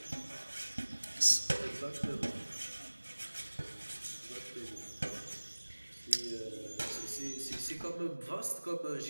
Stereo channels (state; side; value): inverted; both; correlation -1.00